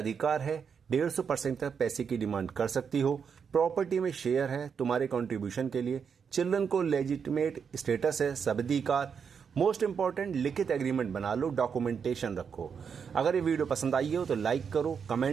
है, 150% तक पैसे की डिमांड कर सकती हो, प्रॉपर्टी में शेयर है तुम्हारे कंट्रीब्यूशन के लिए, चिल्ड्रन को लेजिटिमेट स्टेटस है, सबधिकार, मोस्ट इंपॉर्टेंट लिखित एग्रीमेंट बना लो, डॉक्यूमेंटेशन रखो। अगर ये वीडियो पसंद आई हो तो लाइक करो,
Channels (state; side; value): quieter; left; 6.6 dB